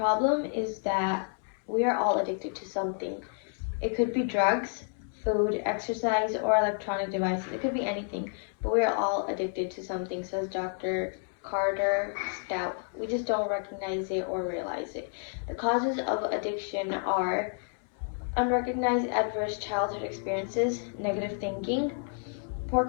is that we are all addicted to something. It could be drugs, food, exercise, or electronic devices. It could be anything, but we are all addicted to something, says Dr. Carter Stout. We just don't recognize it or realize it. The causes of addiction are unrecognized adverse childhood experiences, negative thinking, poor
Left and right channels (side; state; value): right; silent; 58 dB below the other